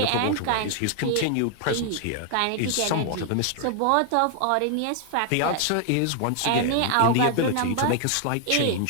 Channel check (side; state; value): both; different; correlation 0.00